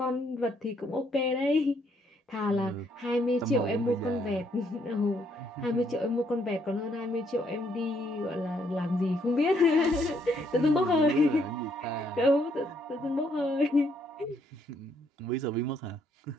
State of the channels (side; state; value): both; normal; correlation 0.71